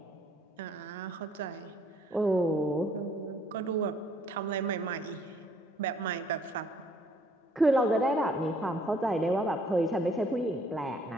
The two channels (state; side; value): normal; both; correlation 0.63